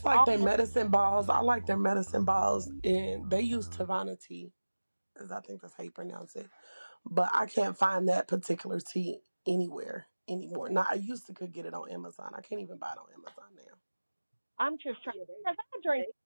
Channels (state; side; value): inverted; both; correlation -1.00